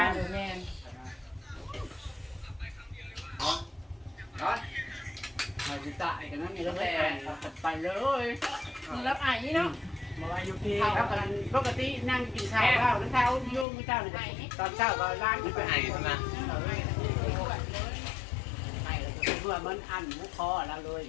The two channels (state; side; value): drops out; right; at 13.7 s